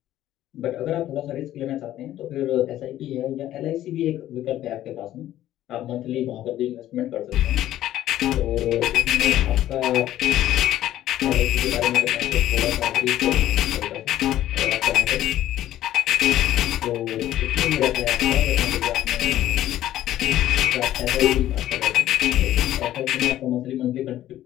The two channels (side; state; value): right; quieter; 13.2 dB